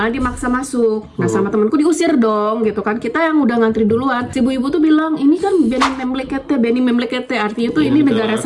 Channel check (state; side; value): identical; both; correlation 1.00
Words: dimaksa masuk. Nah sama temanku diusir dong gitu kan. Kita yang udah ngantri duluan. Si ibu-ibu tuh bilang ini kan Benim Memlekete, artinya tuh ini negara